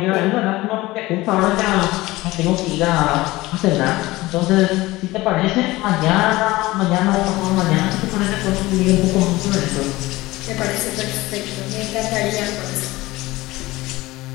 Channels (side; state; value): right; quieter; 19.3 dB